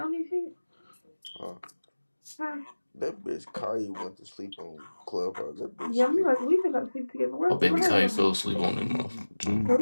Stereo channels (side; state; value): both; inverted; correlation -1.00